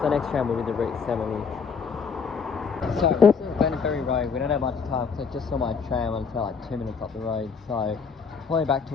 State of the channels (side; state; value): right; quieter; 5.6 dB